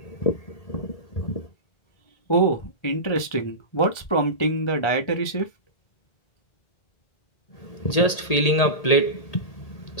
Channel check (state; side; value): late; right; 1.8 ms